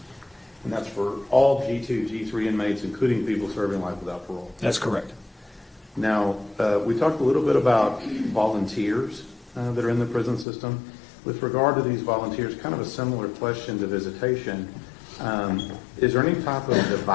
And that's for all G2, G3 inmates, including people serving life without parole? That's correct. Now, we talked a little bit about volunteers that are in the prison system. With regard to these volunteers, kind of a similar question to visitation. Is there any type of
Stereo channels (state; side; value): drops out; right; at 10.5 s